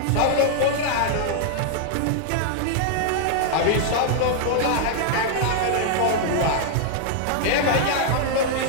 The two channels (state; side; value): different; both; correlation -0.01